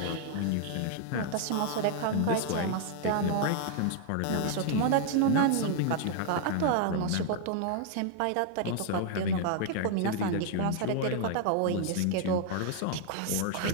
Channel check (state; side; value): different; both; correlation 0.00